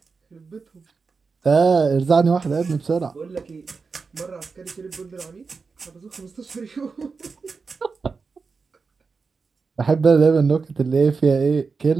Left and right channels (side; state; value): left; quieter; 4.8 dB